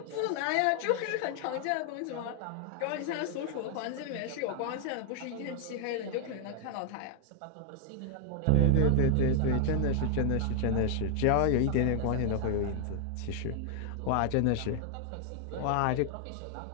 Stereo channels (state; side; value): different; both; correlation 0.00